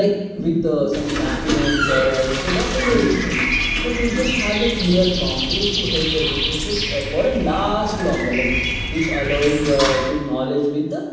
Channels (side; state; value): both; identical; correlation 1.00